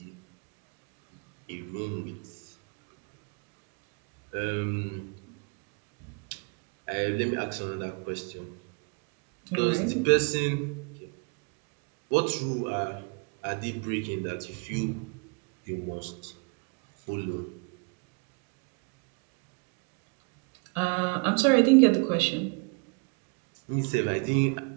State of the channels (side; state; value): left; quieter; 34.5 dB